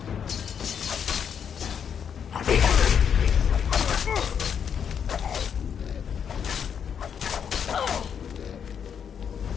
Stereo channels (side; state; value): right; quieter; 7.7 dB